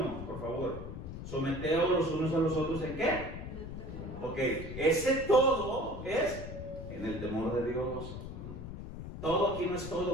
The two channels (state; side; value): noise; left; rumble, 8 dB below the sound